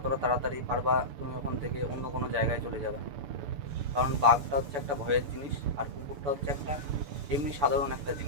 তাড়াতাড়ি পারবা তুমি ওখান থেকে অন্য কোনো জায়গায় চলে যাবে। কারণ বাঘটা হচ্ছে একটা ভয়ের জিনিস, আর কুকুরটা হচ্ছে একটা এমনি সাধারণ একটা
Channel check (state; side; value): late; left; 6.9 ms